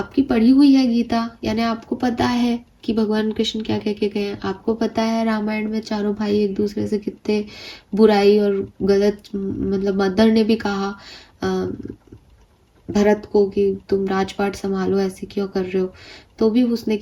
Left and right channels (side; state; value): both; identical; correlation 1.00